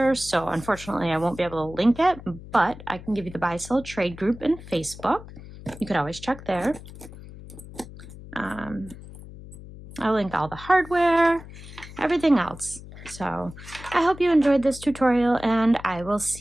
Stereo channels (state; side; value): noise; left; hum, 16 dB below the sound